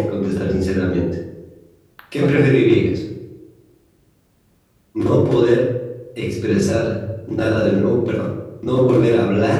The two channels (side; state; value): both; identical; correlation 1.00